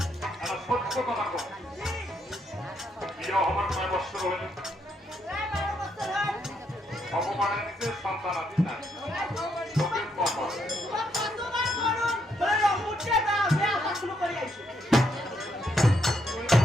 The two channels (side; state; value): both; normal; correlation 0.76